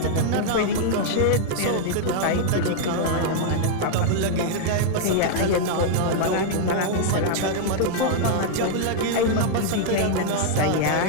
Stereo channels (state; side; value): different; both; correlation -0.01